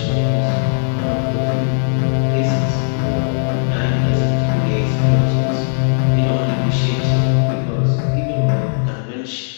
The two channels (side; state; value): right; silent; digital silence